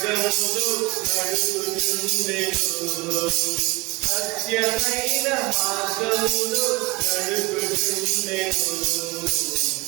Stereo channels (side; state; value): left; quieter; 22.9 dB